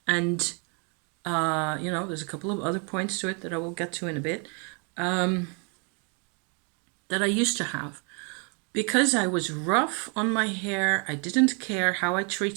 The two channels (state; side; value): quieter; left; 36.4 dB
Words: and there's a couple of other points to it that I will get to in a bit, that I used to have. Because I was rough on my hair, I didn't care how I